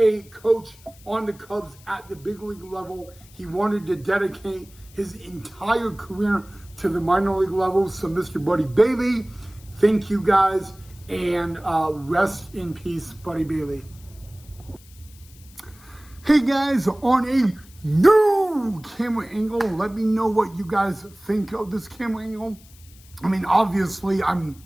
coach on the Cubs at the big league level. He wanted to dedicate his entire career to the minor league level. So, Mr. Buddy Bailey, thank you, guys, and rest in peace, Buddy Bailey. Hey, guys, on a new camera angle, let me know what you guys think of this camera angle. I mean, obviously, I'm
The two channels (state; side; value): noise; left; hiss, 25 dB below the sound